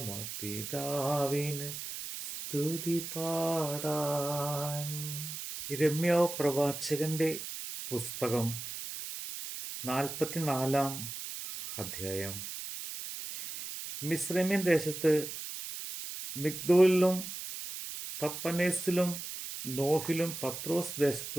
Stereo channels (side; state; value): right; noise; hiss, 8 dB below the sound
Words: സ്തുതി പാടാൻ. യിരെമ്യാ പ്രവാചകന്റെ പുസ്തകം 44 അധ്യായം. മിസ്രൈമ്യൻ ദേശത്ത് മിഗ്ദോലിലും തപ്പനേസിലും നോഹിലും പത്രോസ്